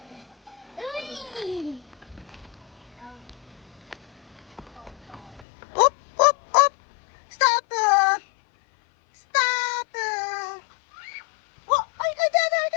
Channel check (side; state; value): right; drops out; at 5.5 s